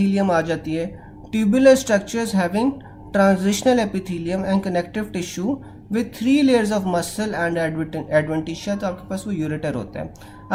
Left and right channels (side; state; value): both; identical; correlation 1.00